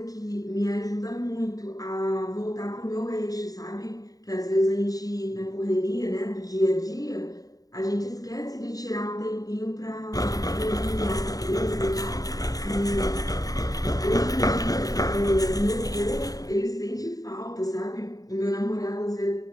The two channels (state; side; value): late; right; 0.18 ms